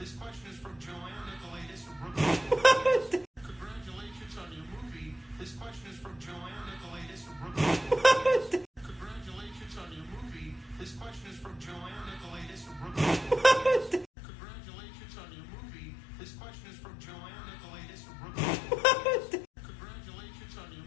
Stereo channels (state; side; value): drops out; right; at 14.1 s